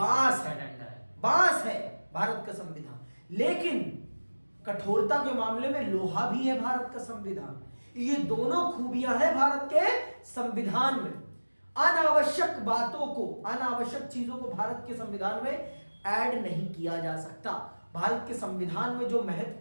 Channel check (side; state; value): both; inverted; correlation -1.00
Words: है भारत का संविधान, लेकिन कठोरता के मामले में लोहा भी है भारत का संविधान। ये दोनों खूबियां हैं भारत के संविधान में। अनावश्यक चीजों को भारत के संविधान में ऐड नहीं किया जा सकता। भारत के संविधान में जो